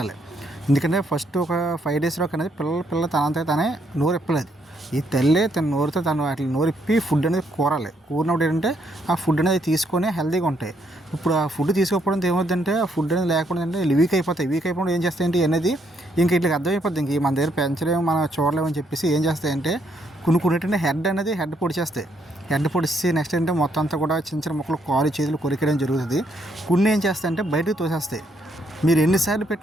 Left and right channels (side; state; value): both; normal; correlation 0.73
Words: ఎందుకంటే ఫస్ట్ ఒక 5 days అనేది పిల్ల తనంతా తనే నోరు ఇప్పలేదు. ఈ తల్లే తన నోరుతో తను వాటి నోరిప్పి ఫుడ్ అనేది కూరినప్పుడు ఏంటంటే ఆ ఫుడ్ అనేది తీసుకొని హెల్తీగా ఉంటాయి. ఇప్పుడు ఆ ఫుడ్ తీసుకోకపోవడం ఏమవుతుందంటే ఆ ఫుడ్ అనేది లేకుండా అంటే వీక్ అయిపోతాయి. వీక్ అయిపోవడం ఏం చేస్తాయంటే అనేది ఇంక ఇట్లా అర్థమైపోద్ది, ఇంక మన దగ్గర పెంచలేము మనం చూడలేమని చెప్పేసి ఏం చేస్తాయంటే కొన్నింటింటే హెడ్ పొడిచేస్తాయి. హెడ్ పొడిచి నెక్స్ట్ ఏంటంటే మొత్తం అంతా కూడా చిన్న చిన్న ముక్కలు కాలు చేతులు కొరికేయడం జరుగుతుంది. కొన్ని ఏం చేస్తాయంటే బయటకు తోసేస్తాయి. మీరు ఎన్నిసార్లు